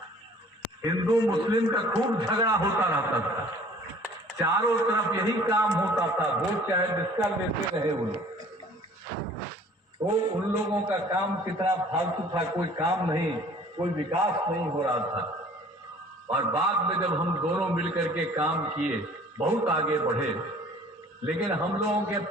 हिंदू मुस्लिम का खूब झगड़ा होता रहता था, चारों तरफ यही काम होता था। वोट चाहे जिसका लेते रहे वो लोग। तो उन लोगों का काम कितना फालतू था, कोई काम नहीं, कोई विकास नहीं हो रहा था। और बाद में जब हम दोनों मिलकर के काम किए, बहुत आगे बढ़े। लेकिन हम लोगों के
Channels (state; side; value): normal; both; correlation 0.52